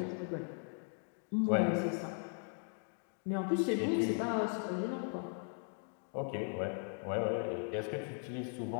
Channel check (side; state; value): right; silent; 52 dB below the other